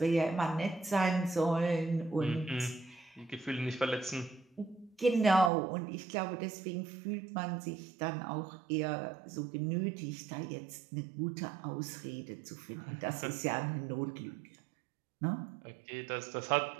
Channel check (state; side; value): drops out; left; at 5.5 s